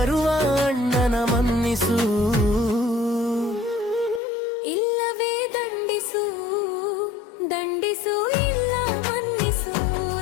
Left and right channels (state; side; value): drops out; right; at 4.2 s